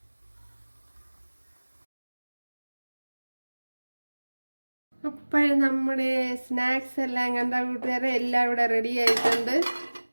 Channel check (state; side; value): inverted; both; correlation -1.00